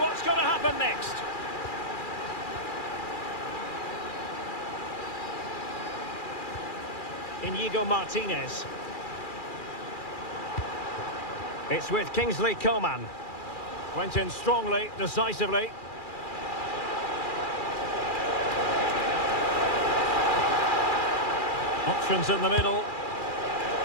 going to happen next? Inigo Martinez. It's with Kingsley Coman. Went in strongly, decisively. Options in the middle.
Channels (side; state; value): right; late; 2.4 ms